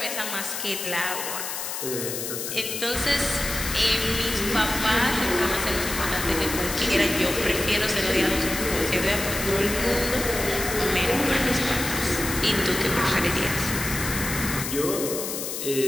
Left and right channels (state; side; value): noise; left; hiss, 5 dB below the sound